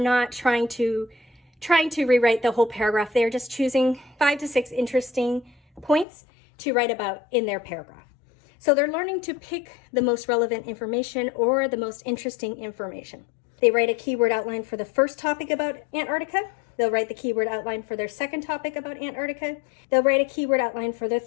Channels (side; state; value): right; drops out; at 6.1 s